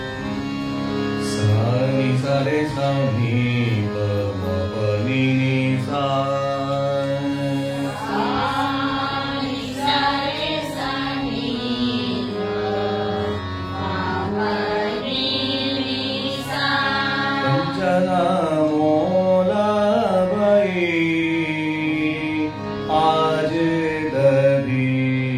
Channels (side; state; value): both; identical; correlation 1.00